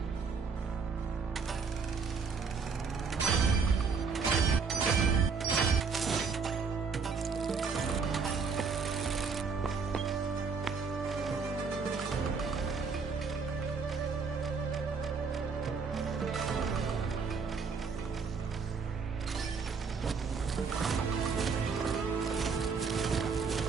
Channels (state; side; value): quieter; left; 5.3 dB